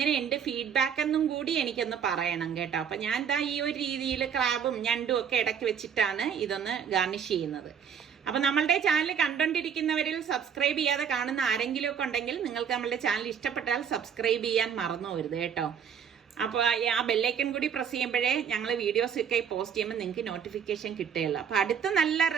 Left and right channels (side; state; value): left; quieter; 7.6 dB